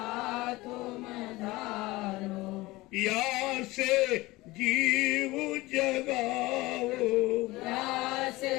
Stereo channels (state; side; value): quieter; right; 20.2 dB